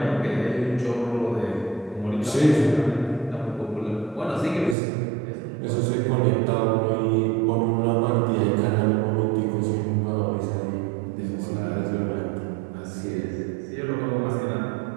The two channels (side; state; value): left; drops out; at 4.8 s